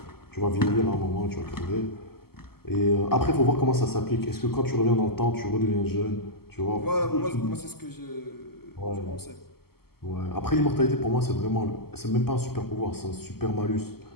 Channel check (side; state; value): right; late; 0.95 ms